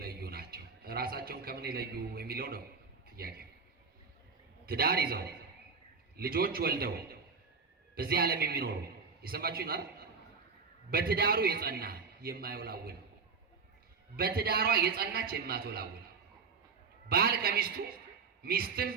ናቸው። ራሳቸውን ከምን የለዩ የሚለው ነው ጥያቄ። ትዳር ይዘው ልጆች ወልደው በዚህ ዓለም የሚኖሩ የሰማችሁኝ አይደል? በትዳሩ የጸና የማይወላውል፣ በትዳሯ የጸናች የማትወላውል፣ ባል ከሚስቱ ሚስትም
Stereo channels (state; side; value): quieter; left; 5.1 dB